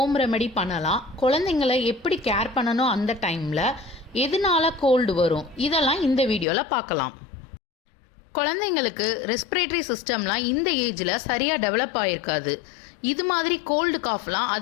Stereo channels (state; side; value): drops out; right; at 6.5 s